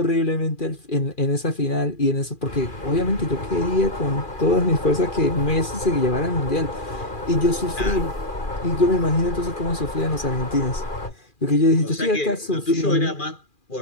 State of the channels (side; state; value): right; late; 2.4 ms